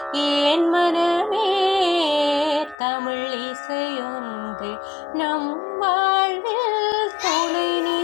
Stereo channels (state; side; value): drops out; right; at 2.8 s